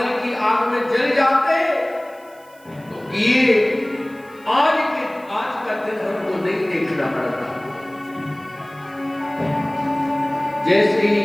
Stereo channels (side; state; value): right; noise; hiss, 28 dB below the sound